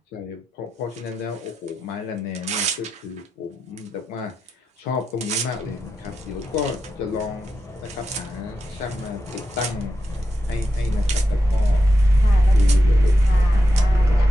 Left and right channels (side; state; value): both; normal; correlation 0.88